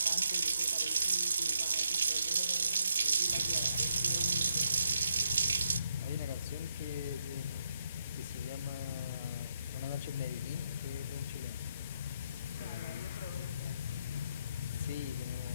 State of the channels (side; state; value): both; inverted; correlation -0.78